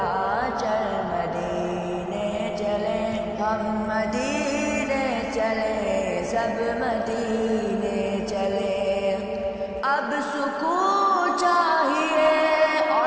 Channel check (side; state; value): both; identical; correlation 1.00